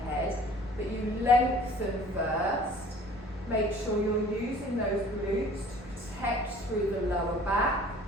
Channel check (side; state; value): both; normal; correlation 0.50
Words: But you lengthen first. Make sure you're using those glutes to protect through the lower back.